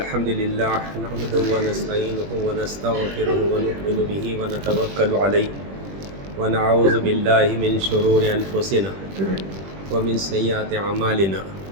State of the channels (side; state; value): left; late; 21 ms